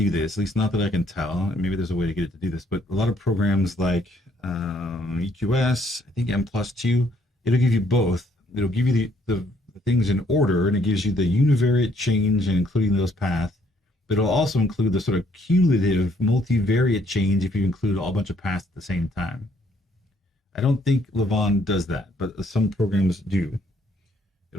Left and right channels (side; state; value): both; normal; correlation 0.67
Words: this, at least not that I can tell. Maybe there's a way to get it to do this, but a lot of programs like EQS, I think M+2, it'll give you both. It'll give you the things in order, and it gives you the univariate change and including those paths, but it'll also include the sort of cumulative multivariate change if you include a bunch of paths at the same time. I don't think Levant does that, but some programs do.